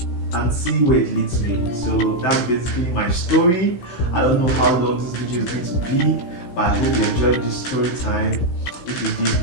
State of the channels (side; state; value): right; late; 16 ms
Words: and see where it leads me. So that's basically my story. I don't know how long this video is going to be, but I hope you enjoyed this story time. If you did,